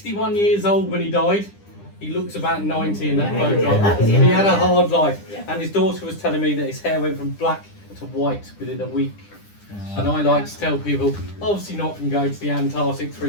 years old when he died. He looks about 90 in that photograph. He had a hard life, and his daughter was telling me that his hair went from black to white within a week. And I like to tell people, obviously not from going to the Antarctic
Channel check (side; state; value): right; late; 9.9 ms